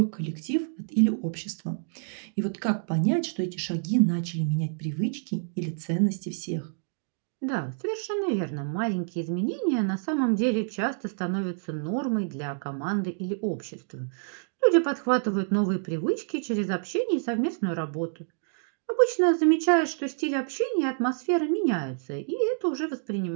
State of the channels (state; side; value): silent; left; digital silence